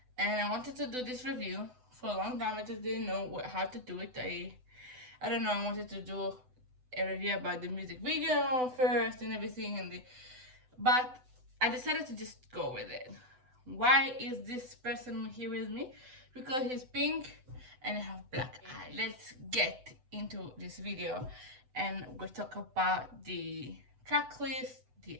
and I wanted to do this review for a long time. I just didn't know how to do it. I don't know. I wanted to do a review about the music video first and everything, but I decided to just go with it. Why is this person here with me? Because he's pink and I have black eye. Let's get into this video and we'll talk about the track list, the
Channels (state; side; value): late; left; 7.9 ms